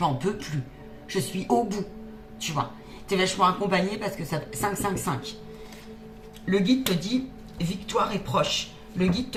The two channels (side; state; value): both; identical; correlation 1.00